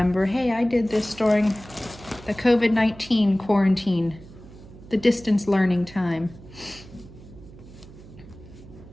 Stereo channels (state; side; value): noise; right; hum, 19 dB below the sound